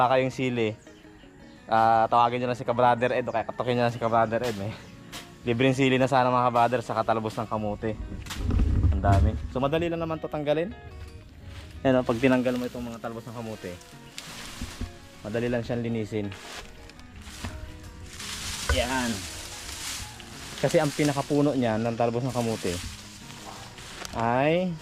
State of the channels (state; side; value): identical; both; correlation 1.00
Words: kayong sili. Tawagin nyo lang si Ka-Brother Ed o kaya katukin nyo lang si Ka-Brother Ed. Libreng sili na sana mga ka-brother sa katalbos ng kamote. Ang dami. So madali lang naman to tanggalin. Yan, pag tinanggal mo itong mga talbos ng kamote, madali lang siyang linisin. Yan. Kasi ang pinakapuno niya ng talbos ng kamote ay